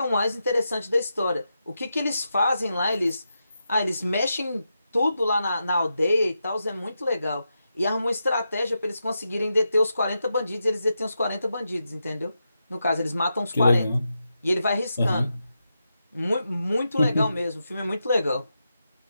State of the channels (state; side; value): inverted; both; correlation -0.87